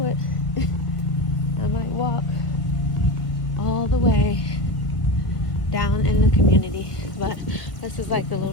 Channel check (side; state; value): right; late; 1.6 ms